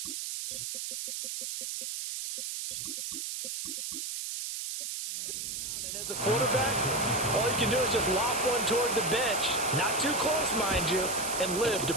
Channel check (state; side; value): noise; right; hiss, 4 dB below the sound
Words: And as a quarterback, all you can do is just flop one toward the bench. Not too close, mind you, and live to